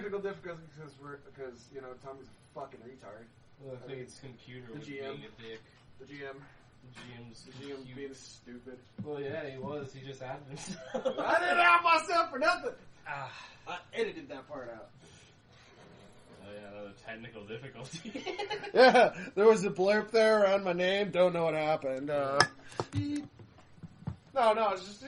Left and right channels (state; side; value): identical; both; correlation 1.00